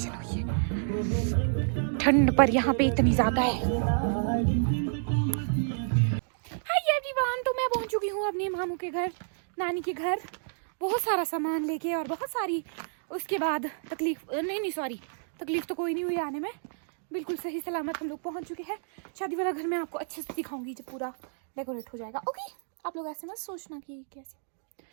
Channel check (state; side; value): silent; left; digital silence